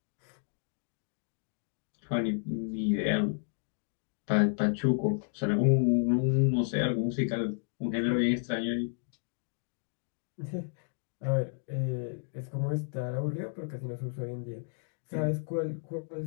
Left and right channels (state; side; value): silent; right; digital silence